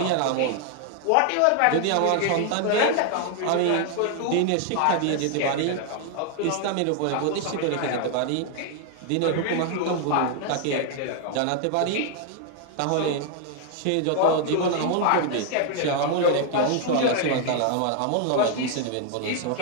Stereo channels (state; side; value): different; both; correlation 0.00